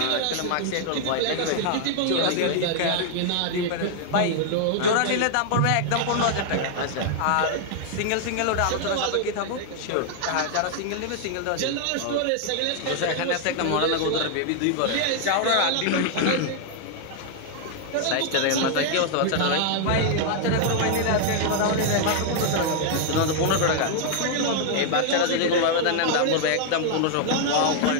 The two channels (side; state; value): both; different; correlation 0.00